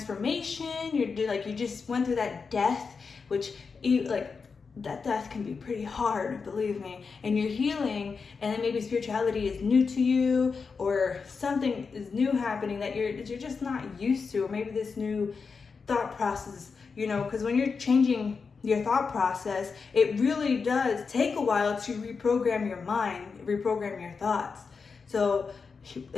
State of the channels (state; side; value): quieter; right; 5.1 dB